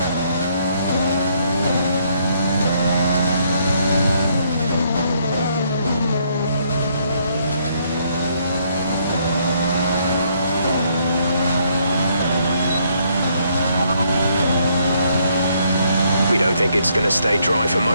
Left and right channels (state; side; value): inverted; both; correlation -0.70